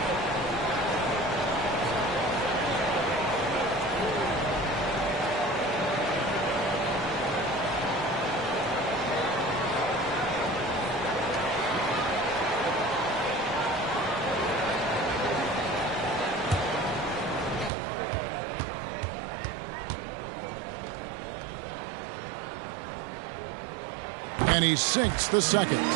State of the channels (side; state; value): left; drops out; at 17.7 s